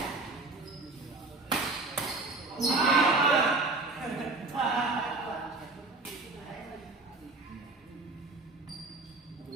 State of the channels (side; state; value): left; quieter; 3.4 dB